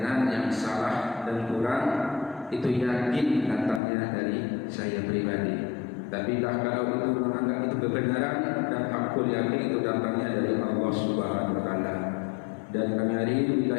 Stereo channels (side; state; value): right; drops out; at 3.8 s